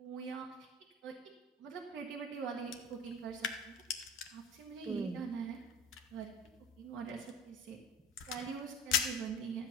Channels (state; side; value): normal; both; correlation 0.38